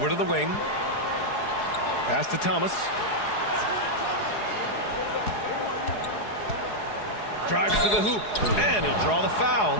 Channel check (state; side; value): late; right; 4.8 ms